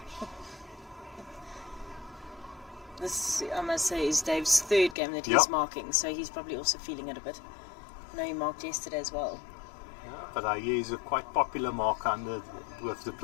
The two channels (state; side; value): drops out; right; at 5.0 s